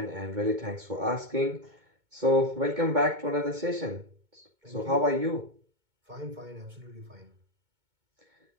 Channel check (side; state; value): left; late; 2.2 ms